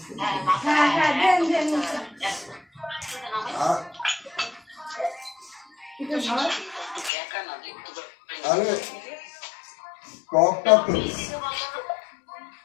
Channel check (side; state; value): right; drops out; at 7.1 s